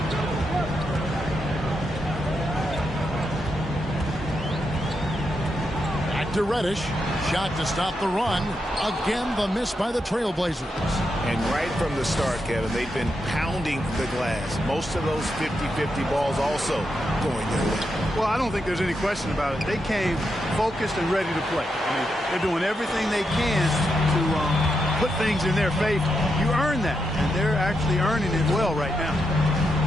Back to Reddish. Shot to stop the run. Again, the miss by the Trailblazers. And right from the start, Kevin, they've been pounding the glass. Most of those 50-50 balls also going their way. Well, I don't think there's any question about it. They came focused and ready to play. I mean, they're doing everything they can to put things in their favor. You earn that, and they're actually earning it well right now.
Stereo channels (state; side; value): normal; both; correlation 0.84